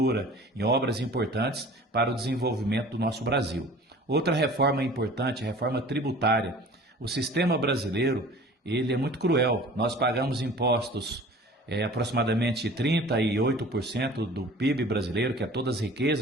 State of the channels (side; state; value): both; normal; correlation 0.45